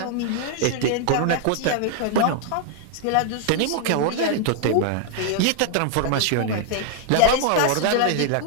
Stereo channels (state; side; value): different; both; correlation 0.00